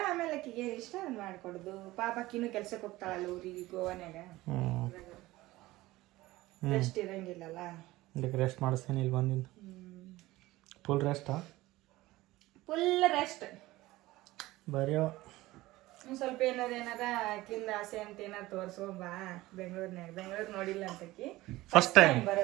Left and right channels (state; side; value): quieter; left; 18.3 dB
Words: ಆಮೇಲೆ ಆಕಿಗೆ ಏನು ಇಷ್ಟ ಅದು ಮಾಡ್ಕೊಡುದು. ಪಾಪ ಆಕಿನೂ ಕೆಲ್ಸಕ್ಕೆ ಹೋಗ್ತಾಳಲ್ಲ ಊರಿಗೆ, ಗೋವಾನ್ಯಾಗ. ರೆಸ್ಟ್ ಇರಂಗಿಲ್ಲಲ್ಲ, ಇದಕ್ಕೆ ರೆಸ್ಟ್ ಮಾಡಿಸ್ತೇನೆ ಇಲ್ಲಿ ಬಂದಿಂದ. ಫುಲ್ ರೆಸ್ಟಾ? Full rest. ಬರೆಯೋ ಒಂದ್ ಸ್ವಲ್ಪ ಏನಾರ ಆಕಿಂದ ಆಸೆ ಅಂತ ಏನಾರ ತೋರ್ಸ್ಕೊಂಬಾ ಬೆಂಗಳೂರು ನೋಡಿಲ್ಲ ಅಂತಕಿ ಫಸ್ಟ್ ಟೈಮ್